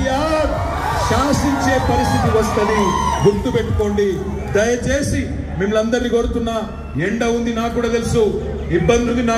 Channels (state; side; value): identical; both; correlation 1.00